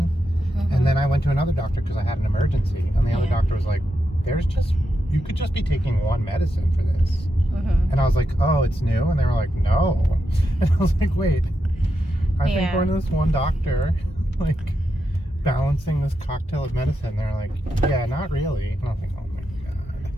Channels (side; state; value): both; normal; correlation 0.86